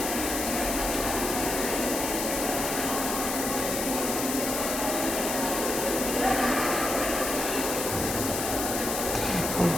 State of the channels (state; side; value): noise; left; hiss, 3 dB below the sound